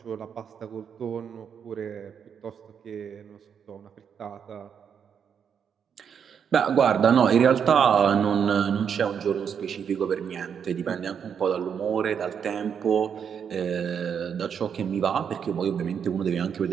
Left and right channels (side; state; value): left; quieter; 7.5 dB